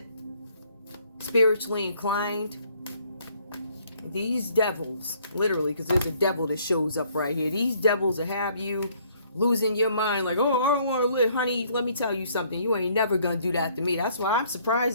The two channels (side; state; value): both; inverted; correlation -0.64